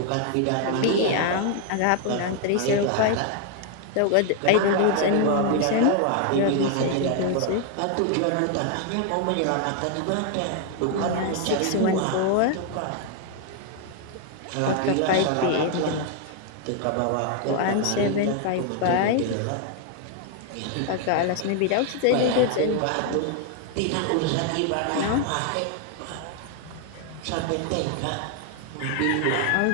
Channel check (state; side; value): different; both; correlation 0.00